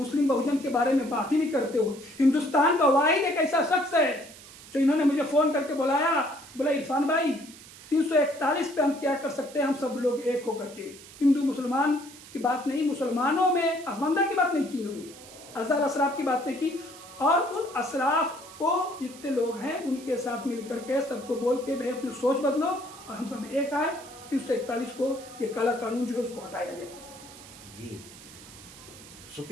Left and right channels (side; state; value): right; noise; hiss, 18 dB below the sound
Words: बहुजन के बारे में बात ही नहीं करते हो। हिंदुस्तान का वाहिद एक ऐसा शख्स है जो इन्होंने मुझे फ़ोन करके बुलाया, बोला इरफान भाई 341 पे हम क्या कर सकते हैं, हम सब लोग एक होकर के, हिंदू मुसलमान की बात नहीं, मुसलमानों में असमंदा की बात नहीं की इन्होंने, अज़हर अशराफ की बात नहीं की, और उन अशराफ को जितने लोग हैं उनके साथ मिल करके सबको बोल के भाई अपनी सोच बदलो और हम सब एक आए, 341 को ये काला कानून जो है उसको हटाया जाए जी।